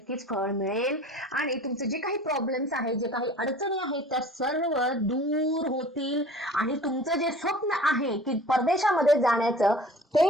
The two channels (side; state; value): both; normal; correlation 0.44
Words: फळ मिळेल आणि तुमचे जे काही प्रॉब्लेम्स आहेत, जे काही अडचणी आहेत त्या सर्व दूर होतील आणि तुमचं जे स्वप्न आहे की परदेशामध्ये जाण्याचं